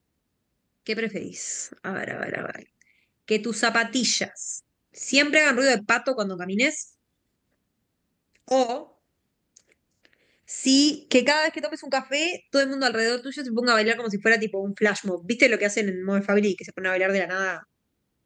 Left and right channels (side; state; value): both; identical; correlation 1.00